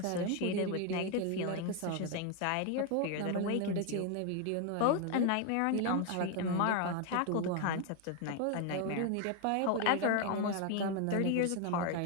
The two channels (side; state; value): both; different; correlation 0.01